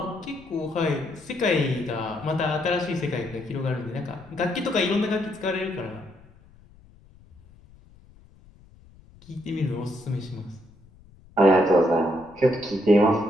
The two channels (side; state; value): left; noise; rumble, 25 dB below the sound